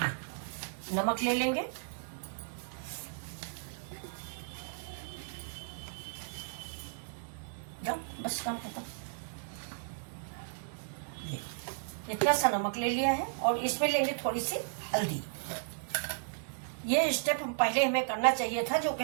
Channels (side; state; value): left; silent; digital silence